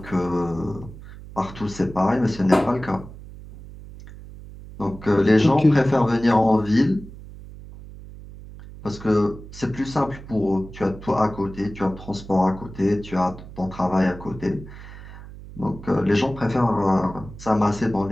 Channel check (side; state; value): right; noise; hum, 15 dB below the sound